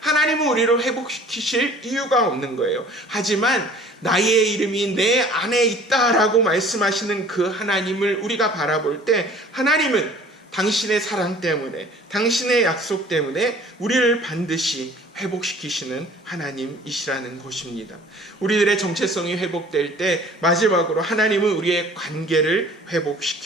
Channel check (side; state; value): both; normal; correlation 0.50